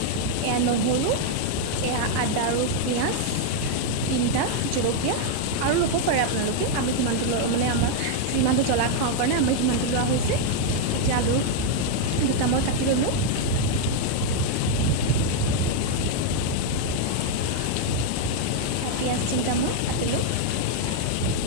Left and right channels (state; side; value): different; both; correlation 0.00